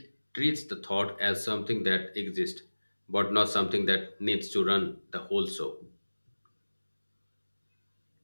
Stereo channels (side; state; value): both; inverted; correlation -1.00